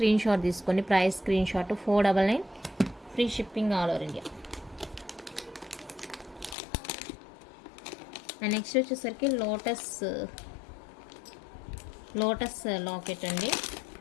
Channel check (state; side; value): drops out; right; at 6.6 s